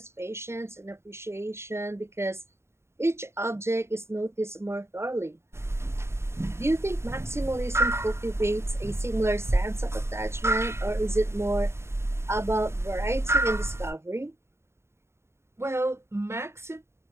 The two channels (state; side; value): late; left; 0.13 ms